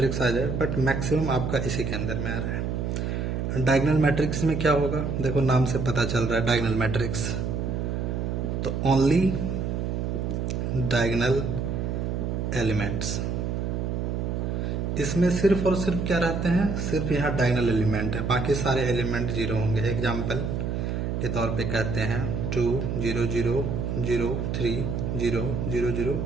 आ जाए, बट मैक्सिमम आपका इसी के अंदर में आ रहा है। डायगोनल मैट्रिक्स में क्या होगा, देखो नाम से पता चल रहा है डायगोनल मैट्रिक्स, तो ओनली डायगोनल एलिमेंट्स, इसमें सिर्फ और सिर्फ क्या रहते हैं, सिर्फ यहाँ डायगोनल एलिमेंट है, बाकी सारे एलिमेंट जीरो होंगे। एग्जाम्पल के तौर पे कहते हैं 2 0 0 0 3 0 0 0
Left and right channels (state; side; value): noise; right; hum, 1 dB below the sound